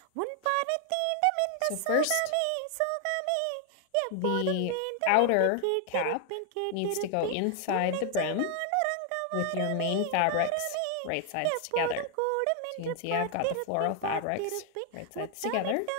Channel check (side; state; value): both; different; correlation 0.00